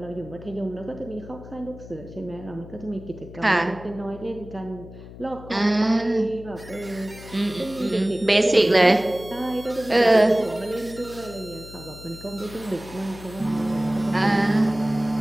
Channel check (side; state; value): left; noise; hum, 16 dB below the sound